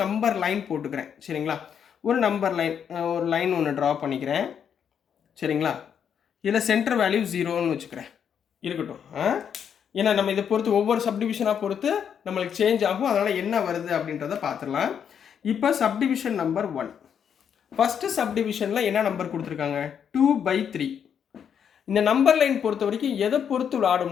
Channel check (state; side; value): quieter; right; 8.0 dB